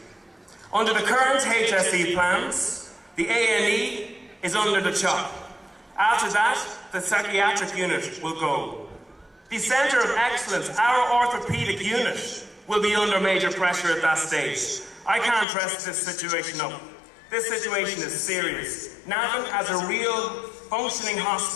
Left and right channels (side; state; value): right; drops out; at 15.5 s